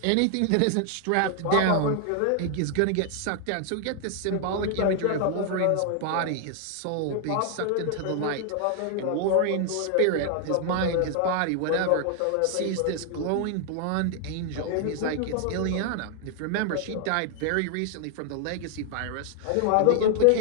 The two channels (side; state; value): both; different; correlation 0.00